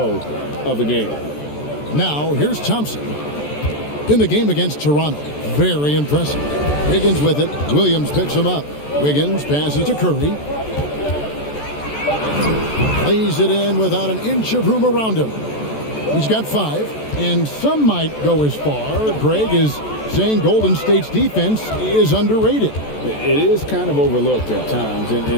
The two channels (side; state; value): right; late; 14 ms